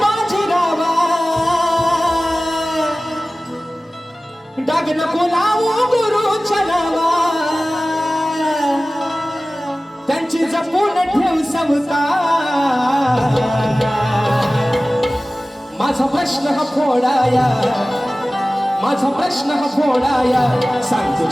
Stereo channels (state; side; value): normal; both; correlation 0.97